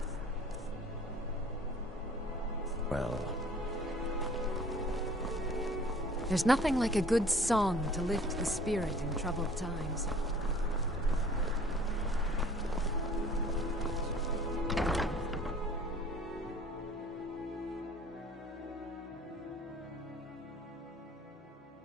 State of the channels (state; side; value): normal; both; correlation 0.52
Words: Well... There's nothing like a good song to lift the spirit in troubled times.